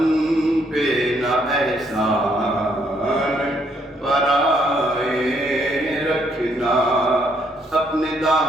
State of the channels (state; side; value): normal; both; correlation 0.71